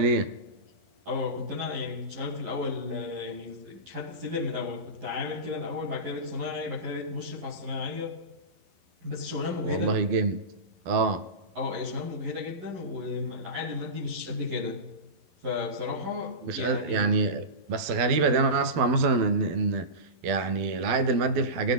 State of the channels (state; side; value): late; left; 12 ms